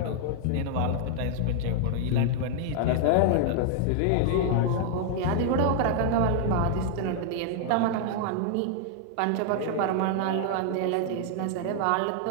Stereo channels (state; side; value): different; both; correlation -0.01